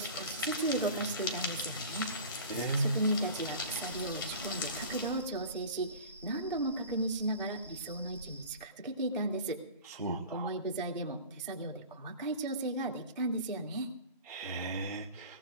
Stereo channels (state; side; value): inverted; both; correlation -0.37